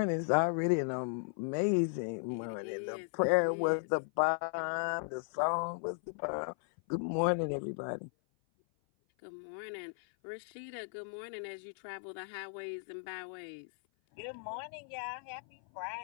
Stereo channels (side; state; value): right; silent; 54 dB below the other